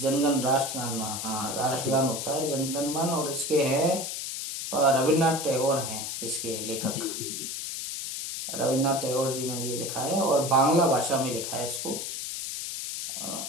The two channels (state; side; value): noise; left; hiss, 5 dB below the sound